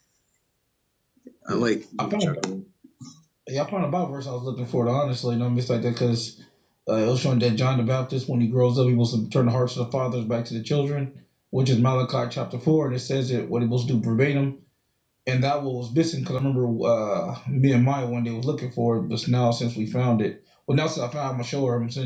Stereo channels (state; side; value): identical; both; correlation 1.00